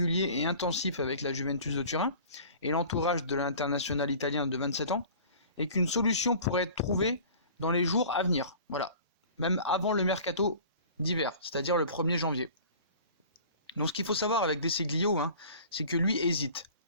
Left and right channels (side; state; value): both; inverted; correlation -0.44